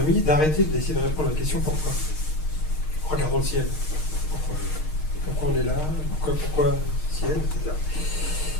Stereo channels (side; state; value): right; late; 6.4 ms